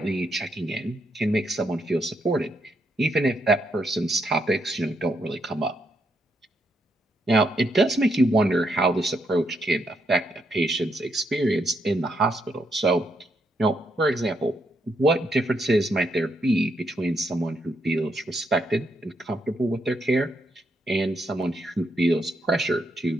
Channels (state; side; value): normal; both; correlation 0.78